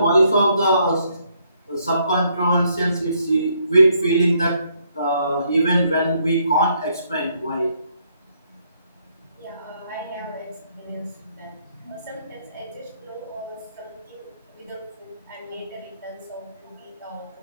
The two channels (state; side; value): inverted; both; correlation -0.71